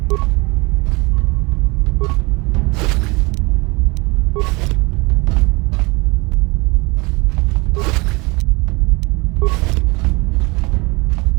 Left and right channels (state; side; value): quieter; left; 26.0 dB